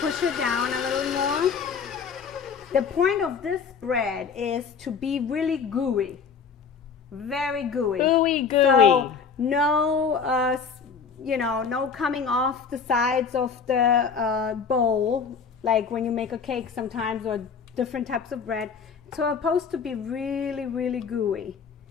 push it down a little more. The point of this bread is to be really gooey. Very gooey. Gooey. So no, no coming off the sides of the bowl, like when you make a cake sometimes, or different types of bread. It's supposed to be really, really gooey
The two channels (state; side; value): quieter; right; 6.0 dB